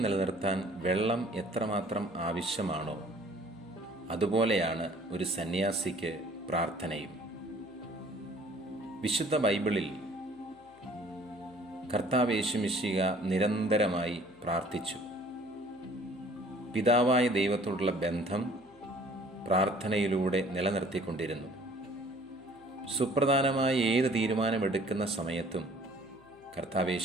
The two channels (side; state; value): left; noise; hum, 29 dB below the sound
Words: നിലനിർത്താൻ വെള്ളം എത്രമാത്രം ആവശ്യമാണോ അതുപോലെയാണ് ഒരു സന്യാസിക്ക് പ്രാർത്ഥനയും. വിശുദ്ധ ബൈബിളിൽ കർത്താവ് യേശുമിശിഹ നിരന്തരമായി പ്രാർത്ഥിച്ചു. പിതാവായ ദൈവത്തോടുള്ള ബന്ധം പ്രാർത്ഥനയിലൂടെ നിലനിർത്തിക്കൊണ്ടിരുന്നു. സുപ്രധാനമായ ഏത് തീരുമാനമെടുക്കുന്ന സമയത്തും കർത്താവ്